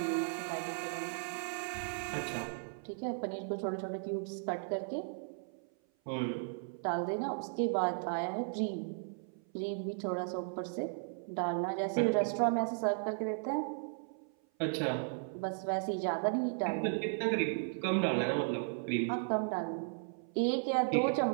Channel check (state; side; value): silent; left; 54 dB below the other